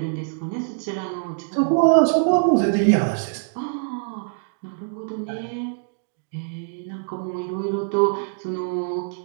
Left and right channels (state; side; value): silent; left; digital silence